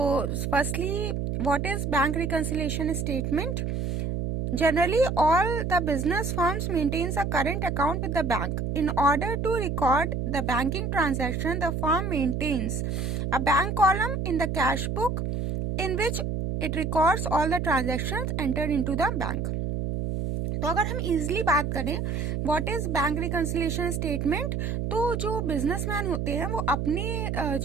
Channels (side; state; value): right; noise; hum, 1 dB below the sound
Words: firstly, what is Bank Reconciliation Statement? Generally, all the business firms maintains a current account with the bank. In order to record the banking transaction, the firm maintains a bank column in the cash book in which it records all the transactions entered into the bank. तो अगर हम easily बात करें what is bank reconciliation statement, तो जो businessman होते हैं वो